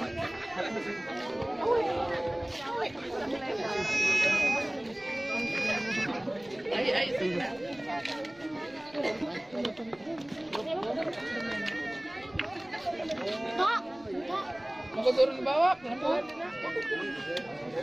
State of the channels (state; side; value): noise; right; rumble, 28 dB below the sound